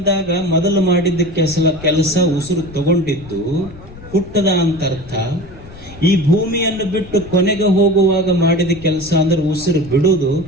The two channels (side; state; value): left; noise; rumble, 18 dB below the sound